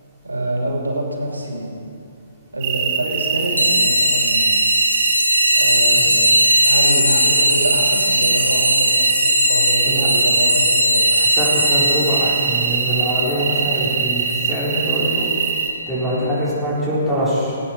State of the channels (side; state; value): both; inverted; correlation -0.70